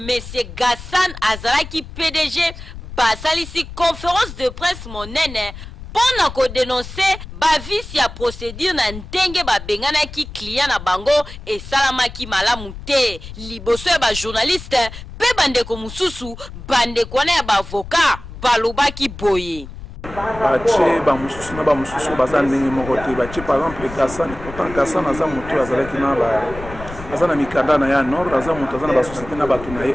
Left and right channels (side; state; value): left; noise; rumble, 13 dB below the sound